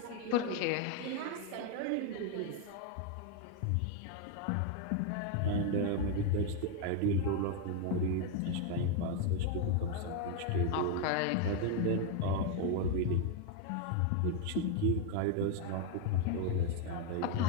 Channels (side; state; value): both; different; correlation 0.01